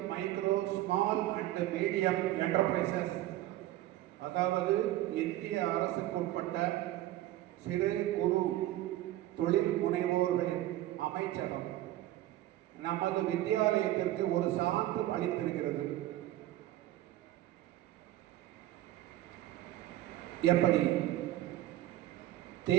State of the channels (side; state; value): left; quieter; 15.0 dB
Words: micro small and medium enterprises, அதாவது இந்திய அரசுக்கு உட்பட்ட சிறு குறு தொழில் முனைவோர்களின் அமைச்சகம் நமது வித்யாலயத்திற்கு ஒரு சான்று அளித்திருக்கிறது. எப்படி?